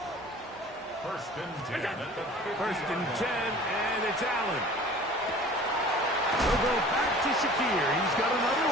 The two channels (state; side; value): normal; both; correlation 0.45